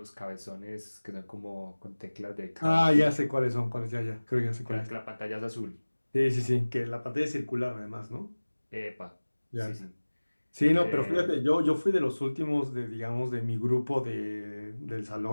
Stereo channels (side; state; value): both; inverted; correlation -1.00